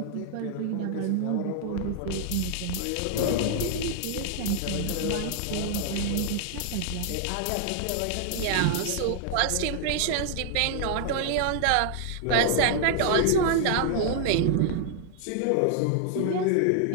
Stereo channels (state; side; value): different; both; correlation 0.00